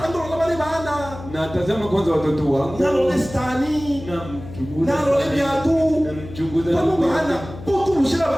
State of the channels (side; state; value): left; noise; hum, 14 dB below the sound